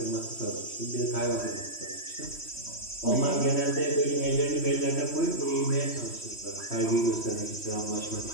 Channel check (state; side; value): late; right; 3.1 ms